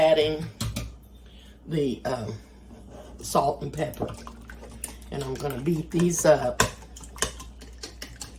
the salt and pepper, and I'm going to beat these up.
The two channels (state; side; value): identical; both; correlation 1.00